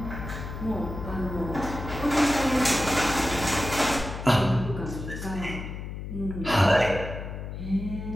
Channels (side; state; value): left; noise; hum, 8 dB below the sound